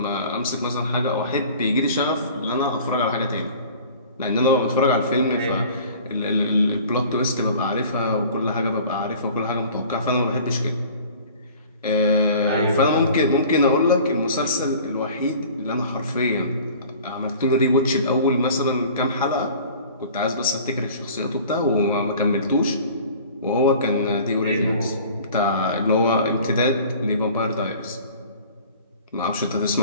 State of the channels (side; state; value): both; inverted; correlation -0.46